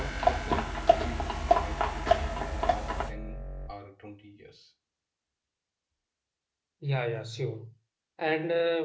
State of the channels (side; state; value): both; identical; correlation 1.00